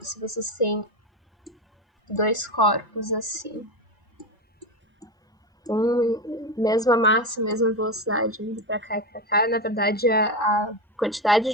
se vocês têm dois corpos assim, mesma massa, mesma velocidade, indo para cá e para cá, na verdade a quantidade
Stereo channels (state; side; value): normal; both; correlation 0.16